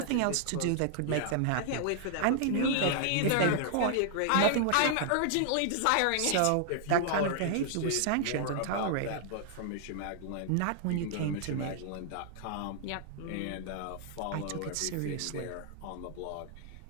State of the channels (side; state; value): both; different; correlation -0.01